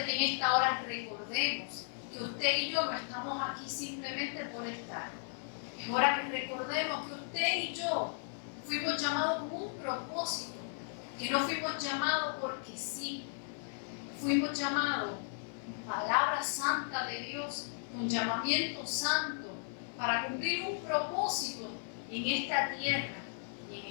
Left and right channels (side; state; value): right; silent; 54 dB below the other